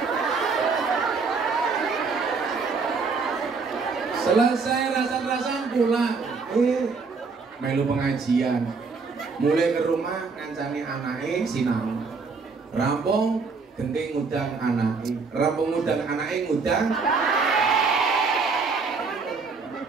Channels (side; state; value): left; quieter; 4.6 dB